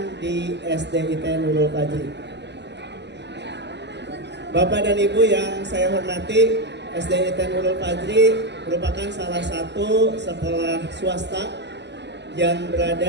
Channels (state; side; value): late; left; 0.50 ms